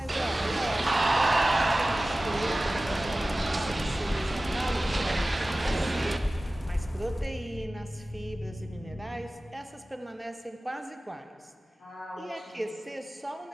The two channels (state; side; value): normal; both; correlation 0.97